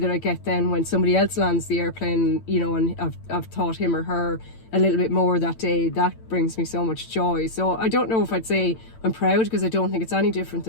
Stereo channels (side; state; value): right; late; 8.9 ms